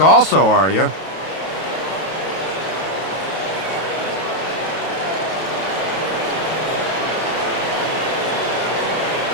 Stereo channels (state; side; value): late; right; 32 ms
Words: also, are you?